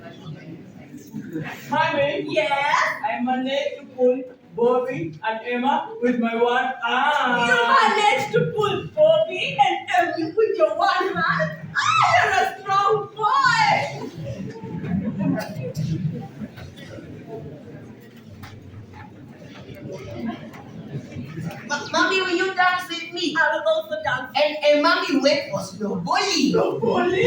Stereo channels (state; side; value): identical; both; correlation 1.00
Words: Mommy, Yes. I managed to pull Bobby and Emma with my one arm. You managed to pull Bobby and Emmy with your one hand? You're a strong boy! Mommy, will you dance with me? I will also dance. And mommy went for snowballing. Snowballing?